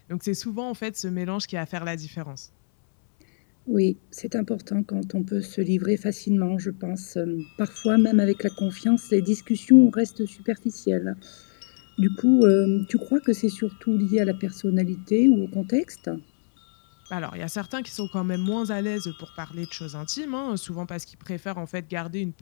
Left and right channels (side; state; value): right; silent; 62 dB below the other